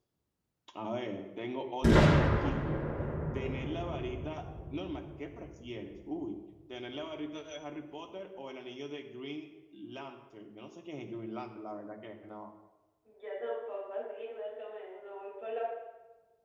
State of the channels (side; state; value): both; identical; correlation 1.00